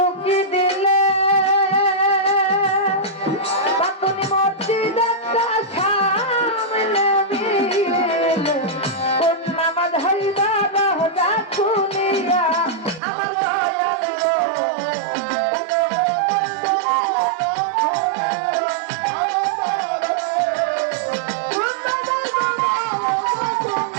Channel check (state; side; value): drops out; left; at 13.0 s